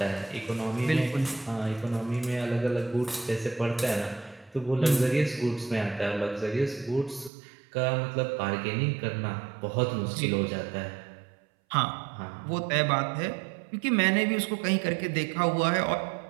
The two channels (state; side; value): drops out; left; at 7.3 s